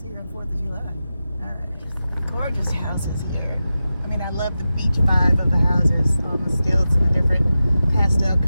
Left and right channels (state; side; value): inverted; both; correlation -0.92